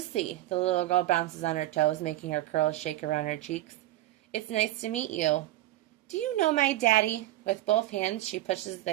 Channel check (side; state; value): left; quieter; 15.4 dB